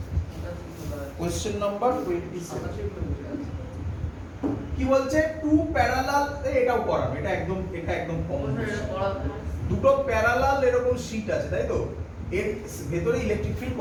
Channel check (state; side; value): identical; both; correlation 1.00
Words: কোশ্চেন নাম্বার 27 কি বলছে? টু প্যারালাল, এটাও করানো, এটা একদম কমন। দুটো প্যারালাল এরকম শীট আছে, তাই তো? এর ভেতরে ইলেকট্রিক ফিল্ড